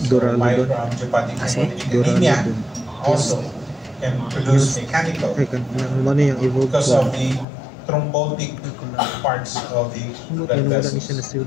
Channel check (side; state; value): right; drops out; at 7.5 s